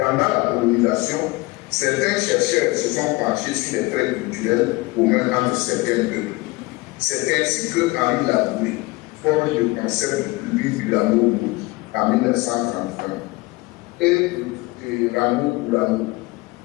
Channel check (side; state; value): right; quieter; 22.6 dB